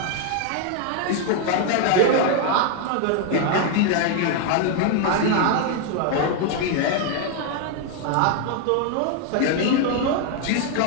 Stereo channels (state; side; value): different; both; correlation 0.01